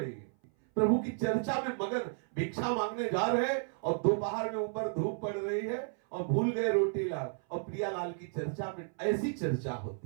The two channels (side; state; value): left; silent; 56 dB below the other